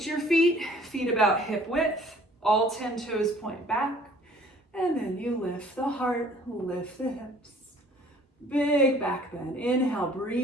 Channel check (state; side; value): normal; both; correlation 0.54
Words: your feet about hip width. All 10 toes point back. And then you lift the heart, lift the hips. Big back bend. Inhale,